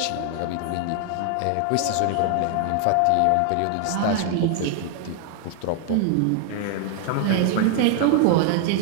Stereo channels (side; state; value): both; different; correlation 0.00